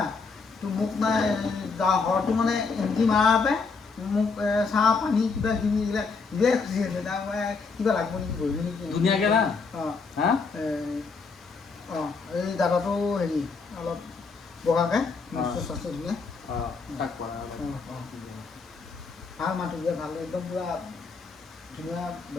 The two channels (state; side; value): quieter; right; 4.7 dB